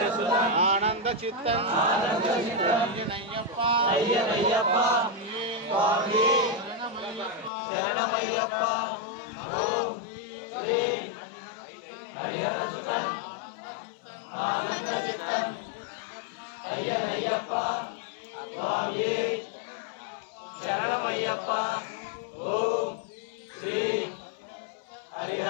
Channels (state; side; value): drops out; right; at 7.5 s